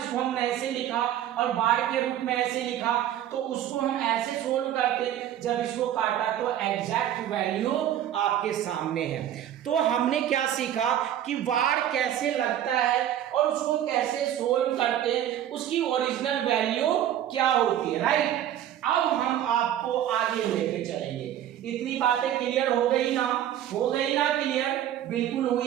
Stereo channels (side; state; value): left; quieter; 11.3 dB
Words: हमने ऐसे लिखा और बार के रूप में ऐसे लिखा, तो उसको हम ऐसे सोल्व करते। जब इसको काटा तो एग्जैक्ट वैल्यू आपके सामने है। तो हमने क्या सीखा कि वार कैसे लगता है और उसको कैसे सोल्व करते हैं, उसकी ओरिजिनल वैल्यू क्या होती है, राइट। अब हम आपको आगे लेके चलेंगे। इतनी बातें क्लियर हो गई ना, हो गई ना क्लियर, बिल्कुल